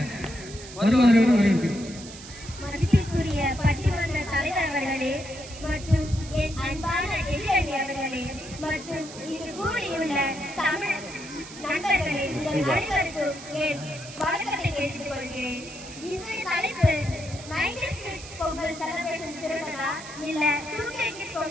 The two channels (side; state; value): right; noise; hiss, 14 dB below the sound